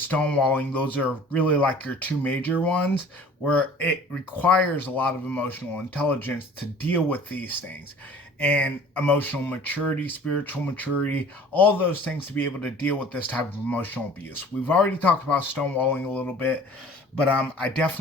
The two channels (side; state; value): both; normal; correlation 0.47